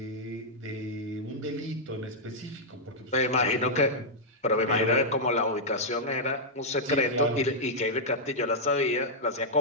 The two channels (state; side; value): normal; both; correlation -0.05